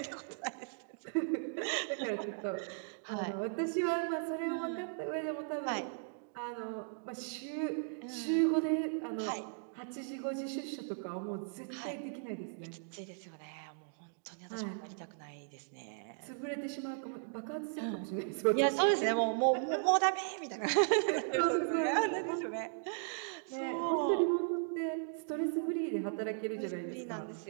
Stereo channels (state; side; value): silent; left; digital silence